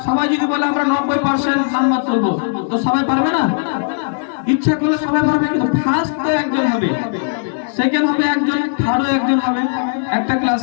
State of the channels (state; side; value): silent; right; digital silence